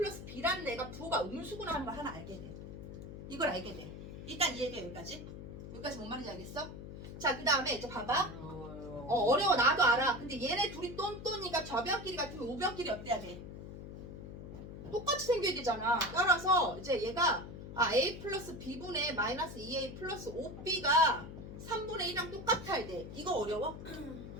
B라는 애가 부호가 음수구나 하는 걸 하나 알게 돼. 이걸 알게 돼. 일단 이해가 여기까지. 여기까지 뭔 말인지 알겠어? 자, 그 다음에 이제 봐봐. 어려워. 나도 알아. 근데 얘네 둘이 똔똔이가 좌변끼리 같으면 우변끼리 어때야 돼? 똑같이 생겨야 되잖아. 따라서 이제 얘가 A 플러스 B분의 마이너스 2A 플러스 5B가 3분의 1이랑 똑같아야 돼. 이거 어려워?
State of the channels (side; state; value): left; noise; hum, 11 dB below the sound